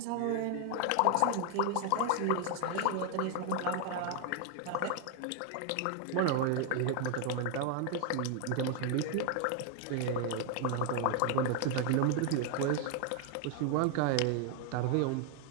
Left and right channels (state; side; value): different; both; correlation 0.00